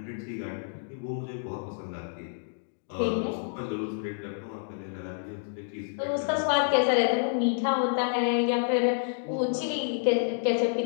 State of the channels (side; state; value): right; silent; digital silence